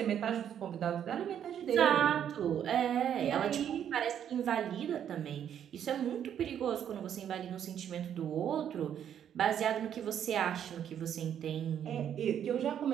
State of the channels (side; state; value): left; quieter; 9.4 dB